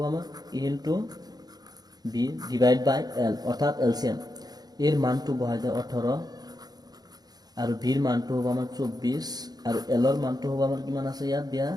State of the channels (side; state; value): left; late; 0.19 ms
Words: আমাৰ A into B divide by L অর্থাৎ এলসিএম। এর মানটো বহাই দেয় 18 আর ভির মানটো হ'ব আমার 24 আর এলর মানটো হ'ব আমার কিমান আছে ইয়াত দিয়া